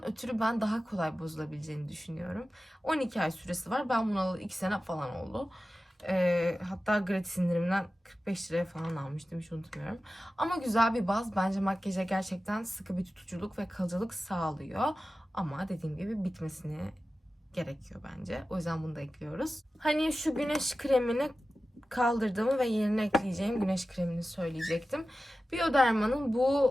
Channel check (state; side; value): normal; both; correlation 0.94